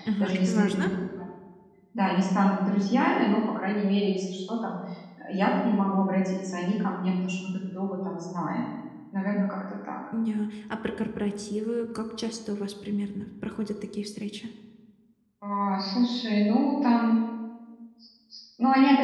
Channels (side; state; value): both; identical; correlation 1.00